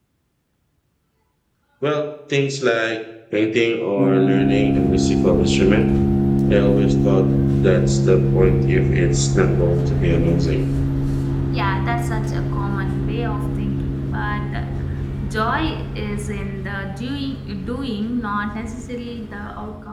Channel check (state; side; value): identical; both; correlation 1.00